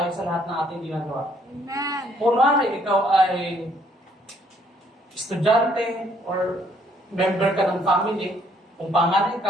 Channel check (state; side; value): normal; both; correlation 0.66